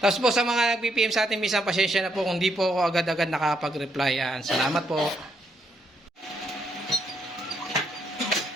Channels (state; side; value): normal; both; correlation 0.76